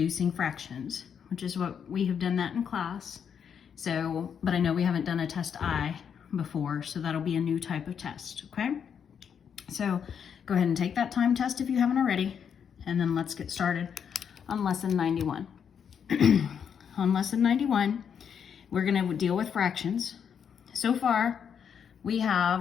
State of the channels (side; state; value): right; quieter; 7.6 dB